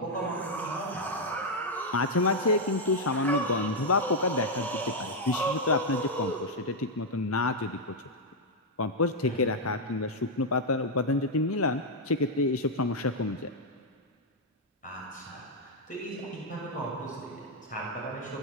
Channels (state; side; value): normal; both; correlation -0.01